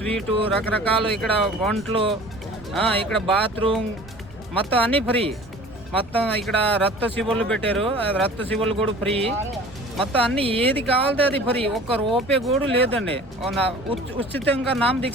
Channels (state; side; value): noise; right; rumble, 23 dB below the sound